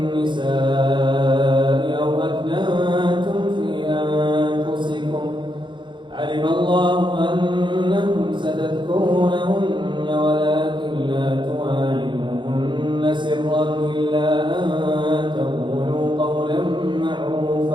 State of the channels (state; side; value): late; left; 0.23 ms